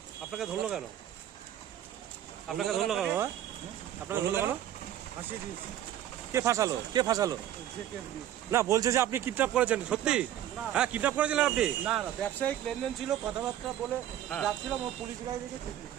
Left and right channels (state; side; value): quieter; left; 11.6 dB